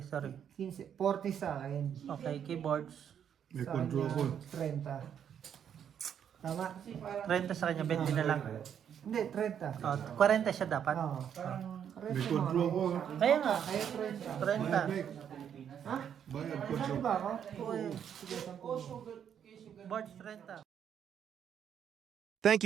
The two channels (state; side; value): quieter; left; 8.7 dB